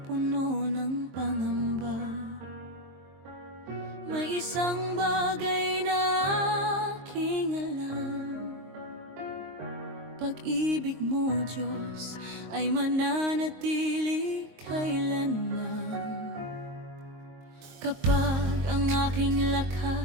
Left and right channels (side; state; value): left; late; 23 ms